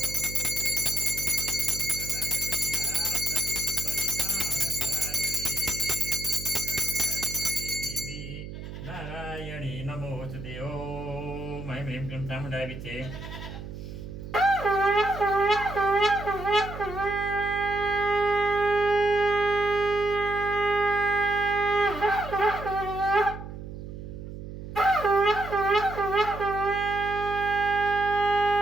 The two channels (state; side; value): noise; right; hum, 10 dB below the sound